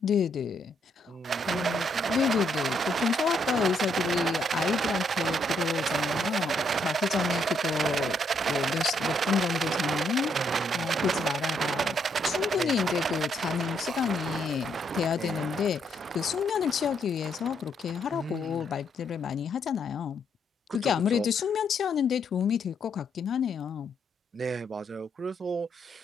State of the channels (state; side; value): normal; both; correlation 0.74